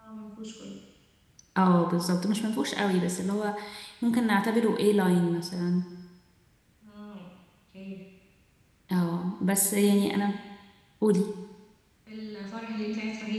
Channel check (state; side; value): identical; both; correlation 1.00